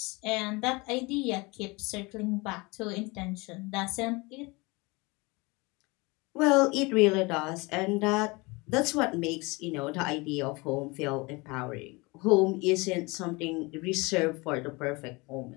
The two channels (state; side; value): quieter; right; 25.4 dB